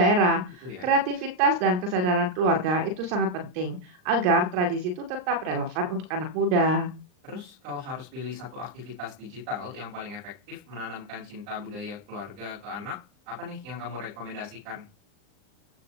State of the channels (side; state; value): left; late; 39 ms